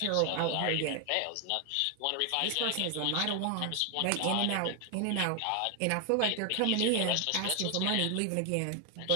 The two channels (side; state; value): both; different; correlation 0.00